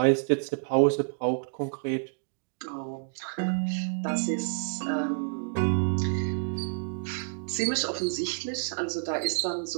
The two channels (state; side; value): silent; left; digital silence